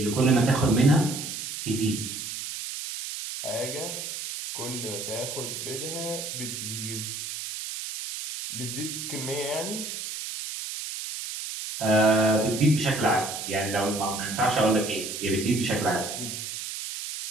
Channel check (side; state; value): right; noise; hiss, 6 dB below the sound